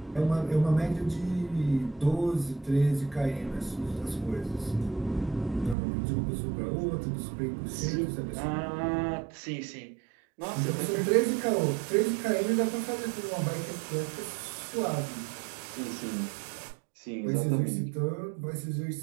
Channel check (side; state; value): left; drops out; at 5.8 s